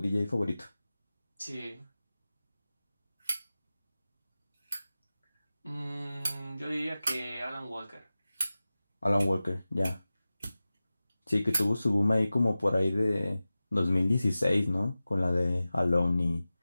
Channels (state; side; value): inverted; both; correlation -0.96